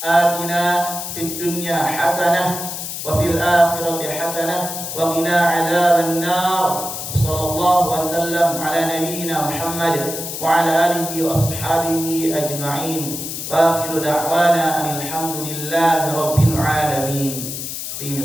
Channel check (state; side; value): noise; left; hiss, 6 dB below the sound